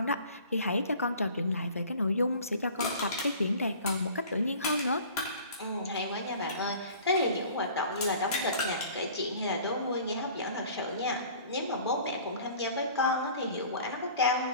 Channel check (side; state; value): both; inverted; correlation -0.47